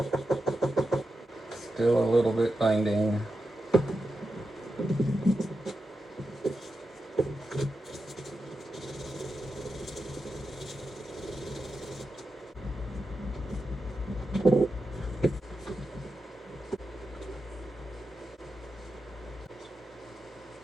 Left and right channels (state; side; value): normal; both; correlation 0.89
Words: Still a little bit binding.